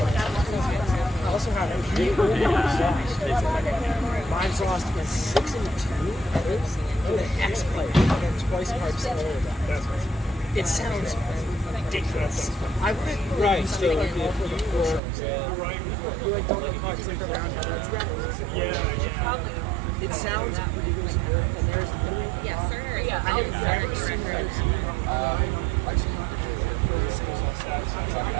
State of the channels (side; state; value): left; drops out; at 15.0 s